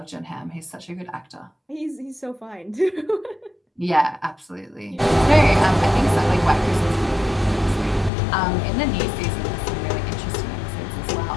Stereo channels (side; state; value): right; drops out; at 8.1 s